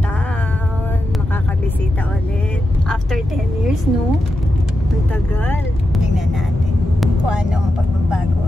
Makakabisita ulit. After 10 years, no? Ang tagal. Tingnan natin kung ano ang pagbabago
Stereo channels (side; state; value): both; normal; correlation 0.89